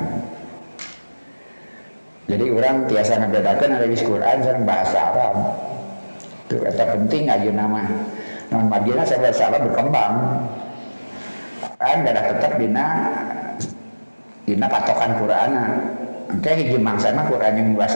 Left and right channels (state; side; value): inverted; both; correlation -1.00